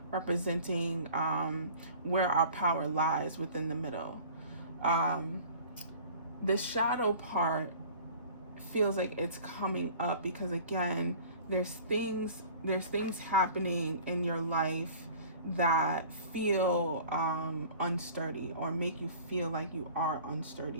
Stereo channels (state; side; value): inverted; both; correlation -0.45